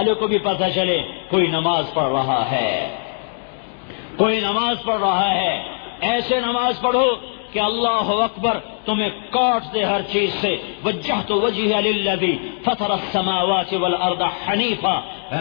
کو بھی پتہ چلے کوئی نماز پڑھ رہا ہے، کوئی نماز پڑھ رہا ہے۔ ایسے نماز پڑھو کہ اللہ اکبر تمہیں کاٹ دے ہر چیز سے۔ وجہت وجہی للذی فطر السماوات والارض حنیفا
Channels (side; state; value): right; silent; digital silence